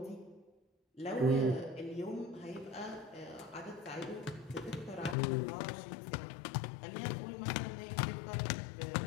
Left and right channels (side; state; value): right; drops out; at 5.2 s